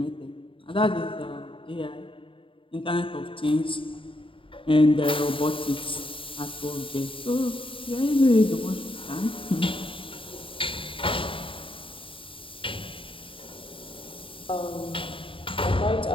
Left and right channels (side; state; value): right; late; 0.25 ms